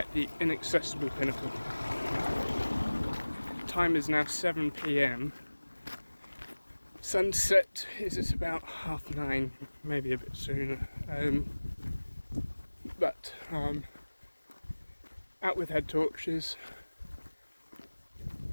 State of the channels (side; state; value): both; inverted; correlation -1.00